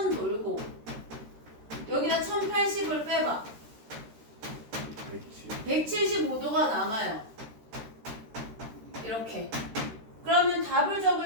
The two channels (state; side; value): late; left; 13 ms